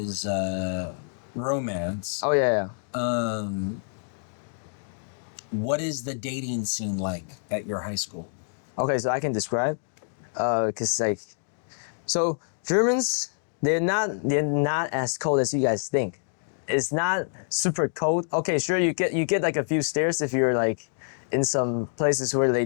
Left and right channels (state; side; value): silent; right; digital silence